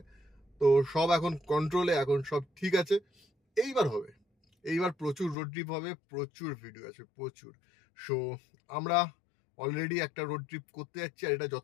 তো সব এখন কন্ট্রোলে, এখন সব ঠিক আছে। এইবার হবে, এইবার প্রচুর রোড ট্রিপ হবে, প্রচুর ভিডিও আছে, প্রচুর। সো আমরা অলরেডি একটা রোড ট্রিপ করতে যাচ্ছি, আর এটা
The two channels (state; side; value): drops out; right; at 5.4 s